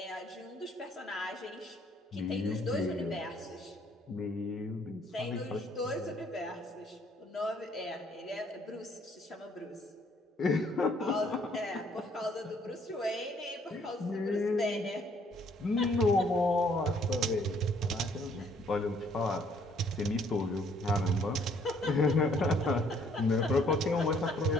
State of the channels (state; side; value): normal; both; correlation 0.64